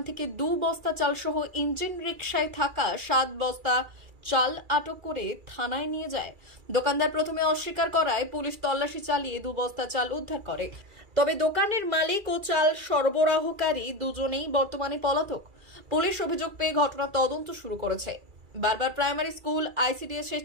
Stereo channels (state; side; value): late; left; 2.3 ms